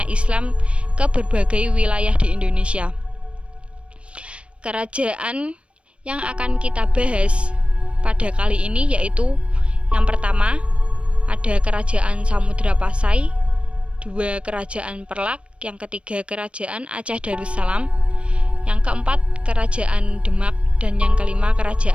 Islam ke berbagai wilayah di Indonesia. Kerajaan yang akan kita bahas pada kali ini yaitu yang pertama ada Kerajaan Samudra Pasai, dua Kerajaan Perlak, yang ketiga Kerajaan Aceh Darussalam, yang keempat Kerajaan Demak, dan yang kelima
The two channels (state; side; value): late; left; 0.060 ms